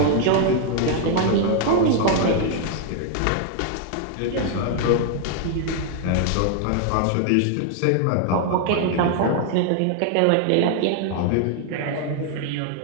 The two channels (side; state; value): both; different; correlation 0.00